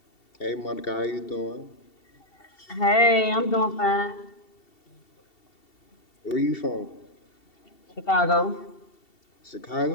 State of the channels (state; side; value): late; right; 2.7 ms